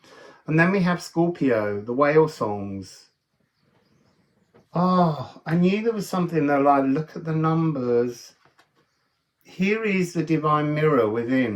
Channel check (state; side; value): identical; both; correlation 1.00